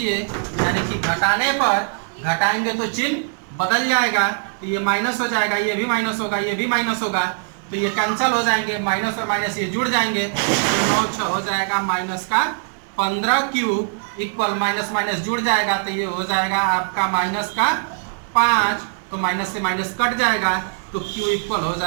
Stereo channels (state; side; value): silent; left; 65 dB below the other